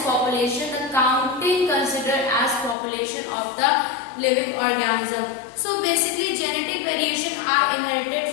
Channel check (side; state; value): right; drops out; at 2.8 s